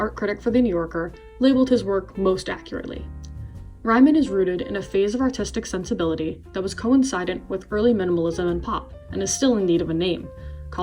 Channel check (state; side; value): identical; both; correlation 1.00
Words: critic for The New Yorker, labeled his work most accurately. Ryman is rooted in a phase of artistic sensibility that was coincident with early minimalism and pop, and is still in need of a name.